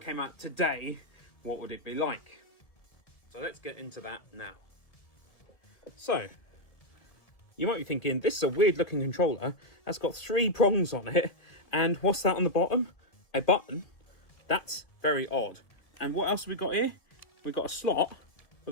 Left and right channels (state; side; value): late; right; 2.0 ms